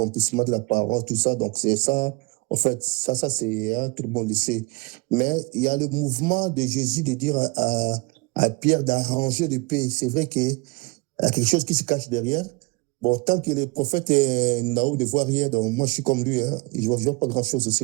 de la parole, tout ça, donc c'est ça, en fait, ça c'est, hein, tout le monde le sait. Mais il y a le mouvement de Jésus de dire à Pierre d'arranger le pays. C'est vrai qu'il y a quelque chose qui se cache derrière. Bon, tant que le prophète Naou ne voit rien, donc moi je suis comme lui, hein, je ne vois pas grand-chose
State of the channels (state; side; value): quieter; left; 26.2 dB